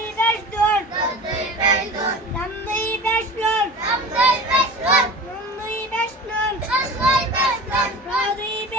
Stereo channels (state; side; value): normal; both; correlation 0.35